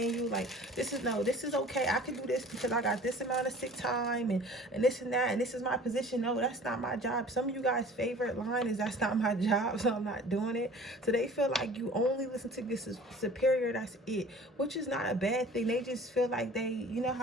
like this is okay, I can do this because I got this amount of sick time and this and that, and this is my position. No, that's not my job. Some of you guys' favorite line is that's not my job, so I'm not doing it. So they feel like you only listen to this superior, that's it, which is not a bad thing. They just feel like you know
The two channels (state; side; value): normal; both; correlation 0.46